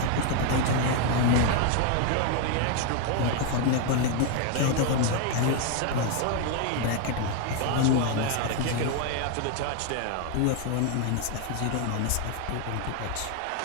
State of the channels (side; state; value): both; different; correlation 0.01